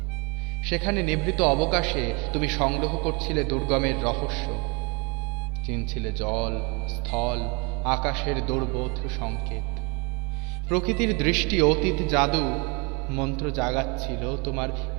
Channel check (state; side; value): quieter; left; 31.1 dB